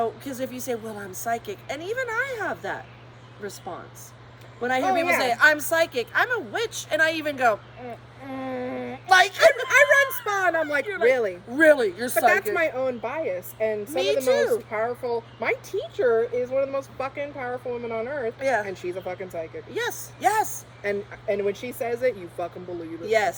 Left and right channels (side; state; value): both; identical; correlation 1.00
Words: because if you say, well, I'm psychic, and even I have that response. When I hear people say, I'm psychic, I'm a witch, and I even go, like, I run spa, and I'm like, really? Really? You're psychic? But that's my own bias, and some of the most powerful, my teacher is one of the most fucking powerful women on earth, and she's a fucking psychic. Yes. And when she says it, you fucking believe it.